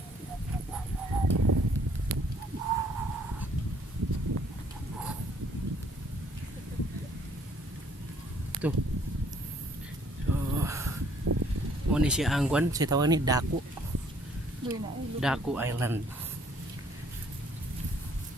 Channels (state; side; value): normal; both; correlation 0.62